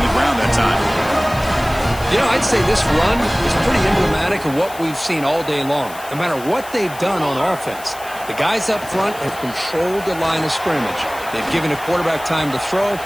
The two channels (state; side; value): noise; left; hiss, 17 dB below the sound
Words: ground that time. You know, I'd say this run is pretty emblematic of what we've seen all day long. No matter what they've done on offense, the guys up front have controlled the line of scrimmage. They've given the quarterback time to throw.